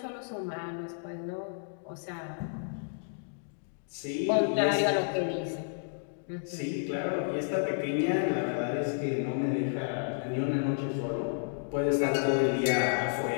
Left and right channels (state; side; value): silent; right; digital silence